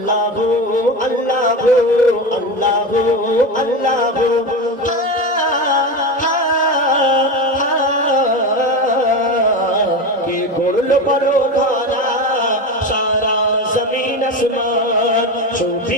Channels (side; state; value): both; normal; correlation 0.22